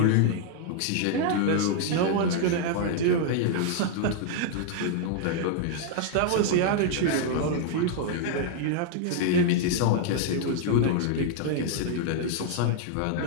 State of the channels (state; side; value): different; both; correlation 0.00